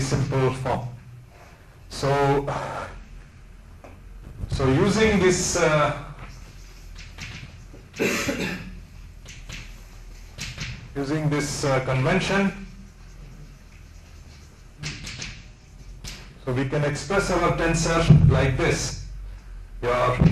simple form. So using this convention, so we can express our tensor like this. Your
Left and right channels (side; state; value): both; identical; correlation 1.00